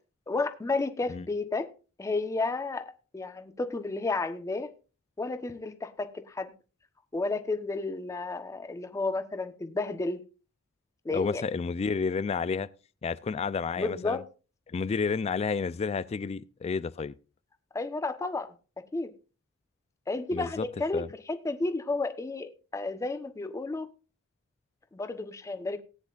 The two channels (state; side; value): quieter; right; 3.4 dB